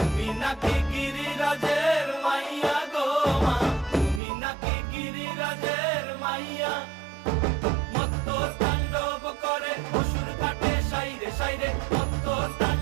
তুমি নাকি গিরিরাজের মাইয়া গো মা, তুমি নাকি গিরিরাজের মাইয়া। মত্ত তাণ্ডব করে অসুর কাটে সাইরে সাইরে, মত্ত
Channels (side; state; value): left; drops out; at 4.2 s